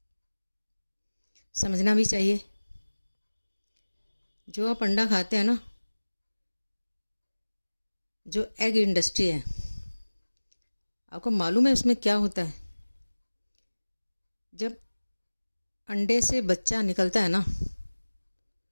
समझना भी चाहिए। जो आप अंडा खाते हैं ना, जो एग इंडस्ट्री है, आपको मालूम है उसमें क्या होता है। जब अंडे से बच्चा निकलता है ना,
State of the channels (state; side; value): inverted; both; correlation -1.00